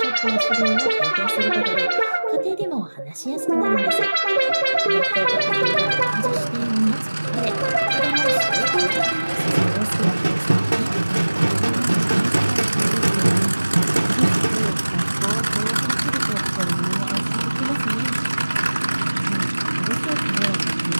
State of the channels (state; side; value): inverted; both; correlation -1.00